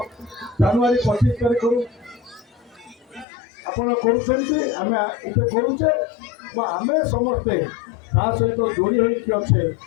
ଜାନୁଆରୀ 25 ତାରିଖରୁ ଆପଣ କରୁଛନ୍ତି, ଆମେ ଏଠି କରୁଛେ। ଆମେ ସମସ୍ତେ ତା ସହିତ ଯୋଡ଼ି ହେଇକି ଅଛେ।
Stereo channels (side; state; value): right; drops out; at 3.2 s